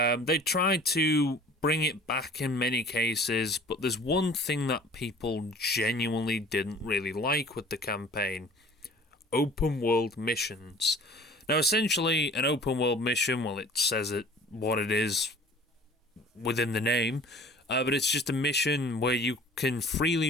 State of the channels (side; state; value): both; normal; correlation 0.47